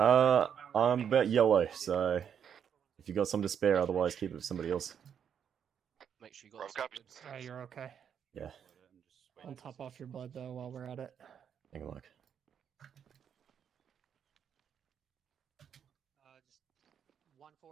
I'm about yellow, so if you got some to spare, otherwise keep it for somebody else. Make sure you got Alright, you're okay. Yeah. I'll top off your blood though while we're at it. Hang on, Mike. Just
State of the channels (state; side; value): quieter; left; 8.1 dB